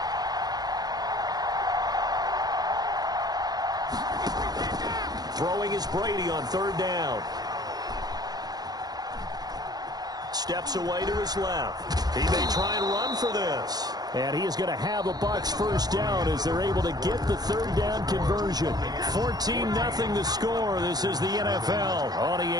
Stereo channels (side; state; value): left; late; 0.19 ms